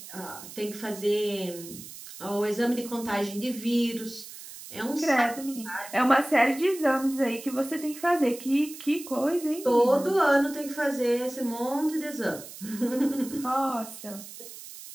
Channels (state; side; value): noise; right; hiss, 14 dB below the sound